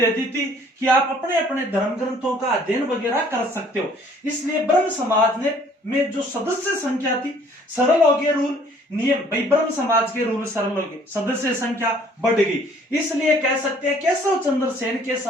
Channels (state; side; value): normal; both; correlation 0.58